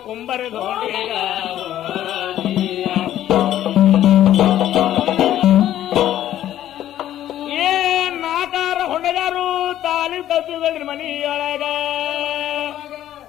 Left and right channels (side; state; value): right; quieter; 12.3 dB